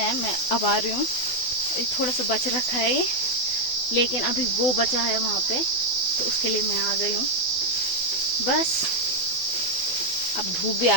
है। मैं अब आ रही हूँ, थोड़ा सा बच रखा है ये, लेकिन अभी वो बचा है वहाँ पे, तो उसके लिए मैं आ गई हूँ। बस अब धूप भी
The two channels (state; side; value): late; right; 12 ms